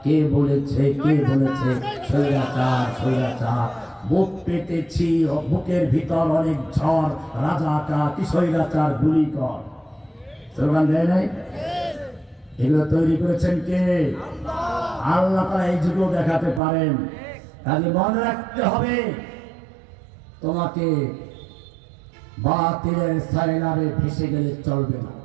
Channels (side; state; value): left; drops out; at 16.6 s